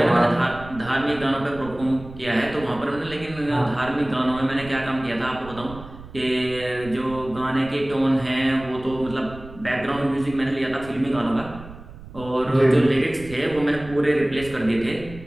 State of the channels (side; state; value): right; noise; rumble, 16 dB below the sound